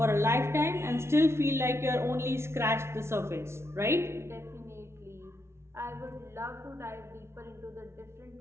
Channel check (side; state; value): left; late; 0.13 ms